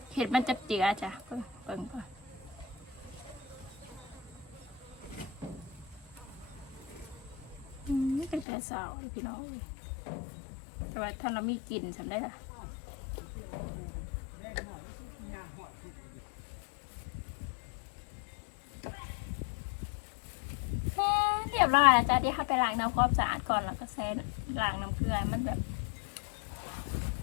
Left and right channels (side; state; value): right; drops out; at 8.5 s